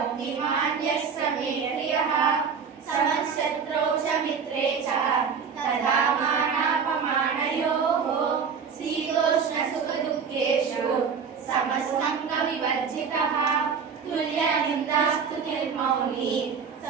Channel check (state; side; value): quieter; left; 6.2 dB